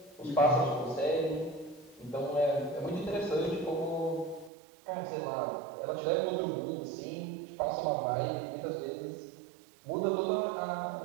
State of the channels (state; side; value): drops out; left; at 4.5 s